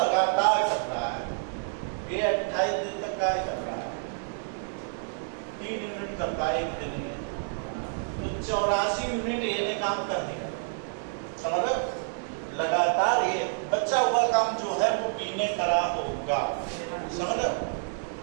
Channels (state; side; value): silent; left; digital silence